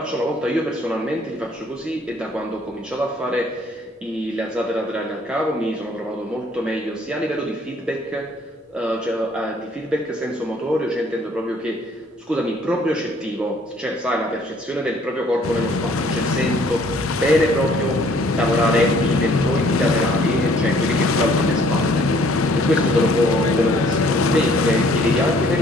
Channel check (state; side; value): normal; both; correlation 0.60